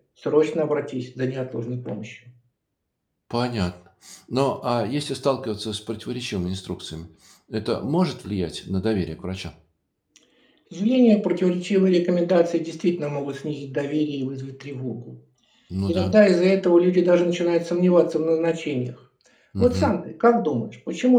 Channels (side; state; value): both; identical; correlation 1.00